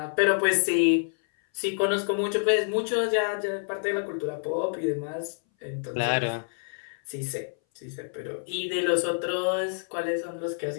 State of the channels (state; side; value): silent; right; 58 dB below the other